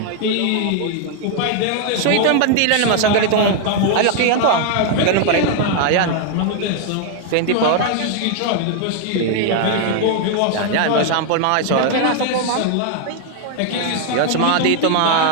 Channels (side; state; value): both; different; correlation 0.00